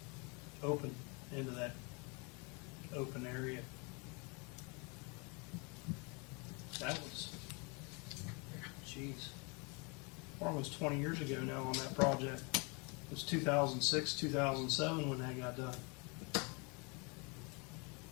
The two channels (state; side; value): quieter; right; 31.4 dB